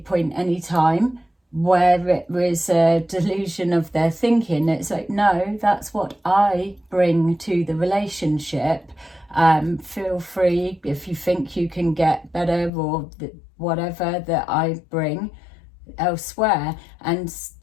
any time, where it was a delusion of their thinking. It's like, no, that's what I bring to the relationship. Feel free if you think you can get better or whatever that I bring elsewhere. And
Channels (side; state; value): right; drops out; at 12.7 s